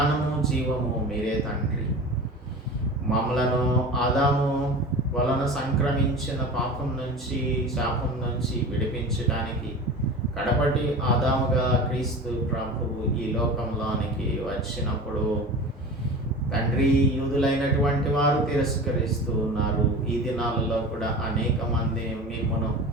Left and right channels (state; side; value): normal; both; correlation 0.34